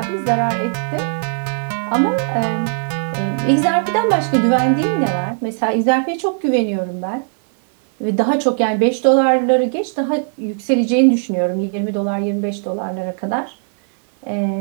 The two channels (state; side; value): silent; left; 67 dB below the other